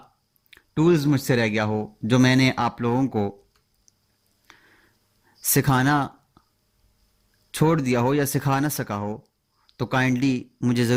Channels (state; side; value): identical; both; correlation 1.00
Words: ٹولز مجھ سے رہ گیا ہو جو میں نے آپ لوگوں کو سکھانا چھوڑ دیا ہو یا سکھا نہ سکا ہو تو کائنڈلی مجھے